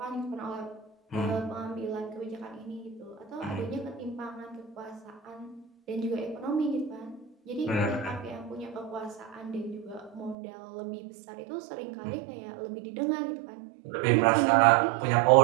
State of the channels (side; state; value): left; drops out; at 10.4 s